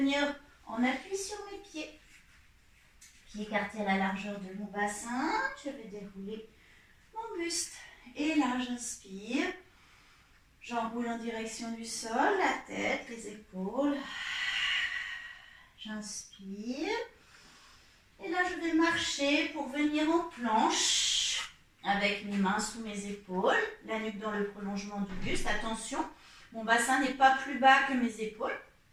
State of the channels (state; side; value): identical; both; correlation 1.00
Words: en appui sur mes pieds. Pieds écartés à la largeur de mon bassin. Je vais dérouler mon buste. Et là, j'inspire. J'enroule en direction du sol, la tête, les épaules. J'inspire. Et là, je vais marcher pour venir en planche avec mes mains sous mes épaules, la nuque dans le prolongement du buste. Attention, mon bassin n'est pas plus bas que mes épaules.